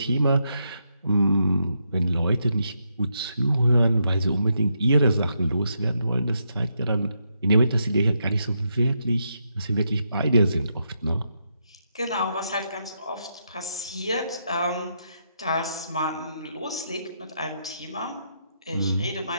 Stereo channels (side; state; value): both; inverted; correlation -0.80